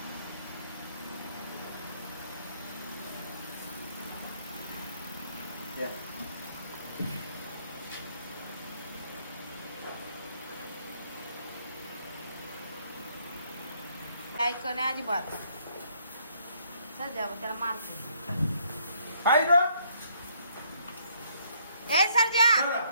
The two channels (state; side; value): inverted; both; correlation -0.68